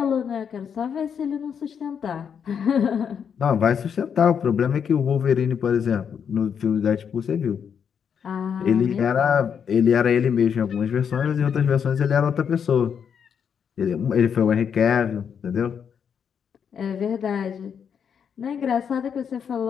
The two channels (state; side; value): quieter; right; 7.4 dB